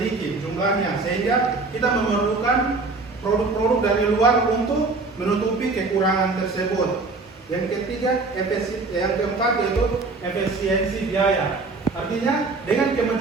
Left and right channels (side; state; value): left; quieter; 3.7 dB